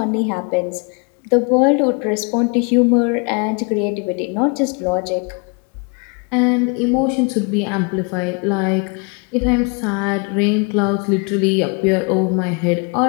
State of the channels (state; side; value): quieter; right; 34.1 dB